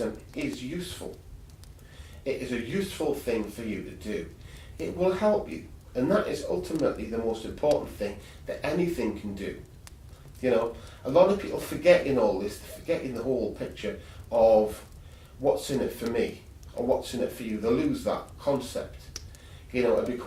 is useful. It is a useful thing for you to do. It will help you. And that is ultimately the most important thing that anything can do. A lot of people forget in all this, they forget in the whole picture of what's in it for me or what's in it for you. They lose that concept. It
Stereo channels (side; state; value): both; identical; correlation 1.00